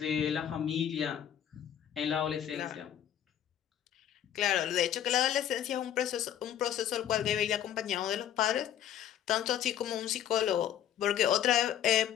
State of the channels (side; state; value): right; quieter; 10.4 dB